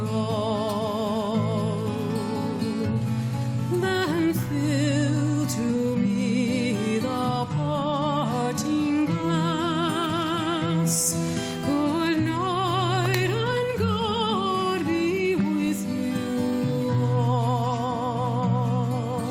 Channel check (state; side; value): identical; both; correlation 1.00